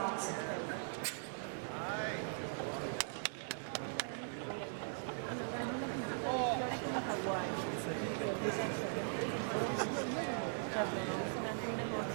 Certo, non ho visto neanche un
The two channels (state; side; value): silent; left; digital silence